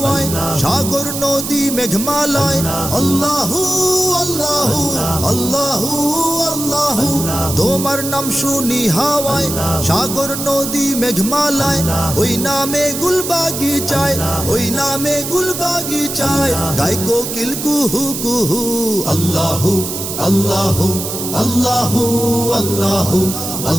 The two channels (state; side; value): noise; right; hiss, 6 dB below the sound